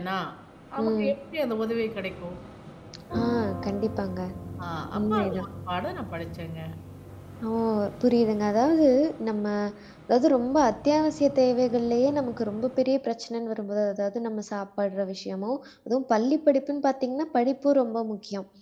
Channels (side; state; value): both; identical; correlation 1.00